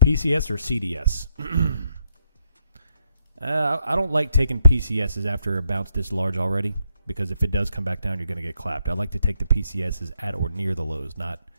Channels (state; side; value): inverted; both; correlation -0.77